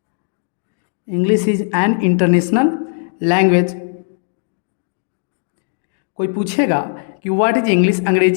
English is an international language. कोई पूछेगा कि व्हाट इज इंग्लिश,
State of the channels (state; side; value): silent; right; digital silence